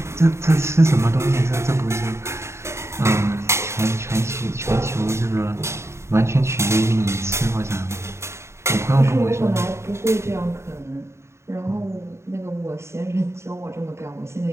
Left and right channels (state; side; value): late; left; 0.13 ms